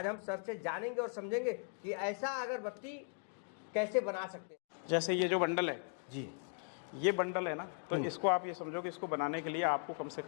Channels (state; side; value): silent; right; 52 dB below the other